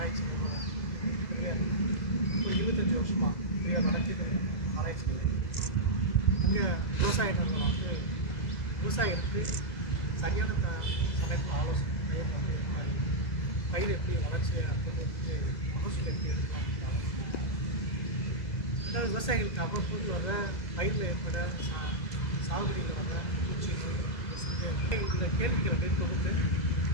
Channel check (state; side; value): late; right; 2.0 ms